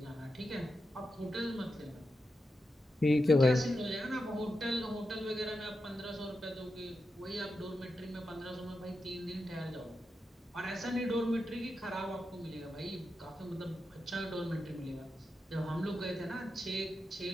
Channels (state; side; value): normal; both; correlation 0.89